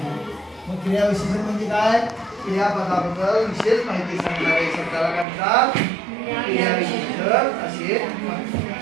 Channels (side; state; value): left; drops out; at 5.2 s